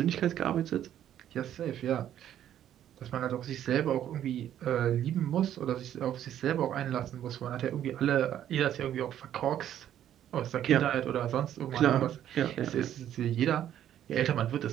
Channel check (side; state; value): left; quieter; 10.9 dB